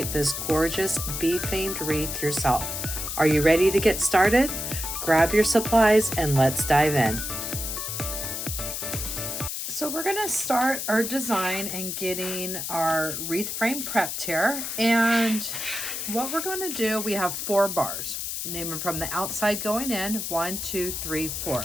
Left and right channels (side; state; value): left; noise; hiss, 4 dB below the sound